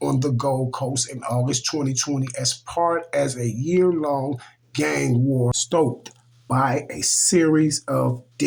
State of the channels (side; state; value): both; identical; correlation 1.00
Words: on the Gold Coast in August 2020 as a year-long gang war stoked by a series of